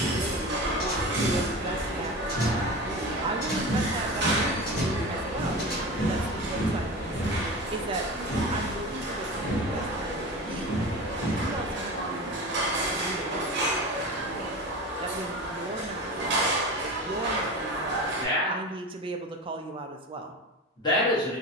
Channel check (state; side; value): normal; both; correlation 0.29